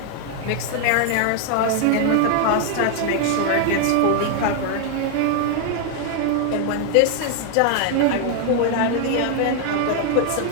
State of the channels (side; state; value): both; different; correlation 0.00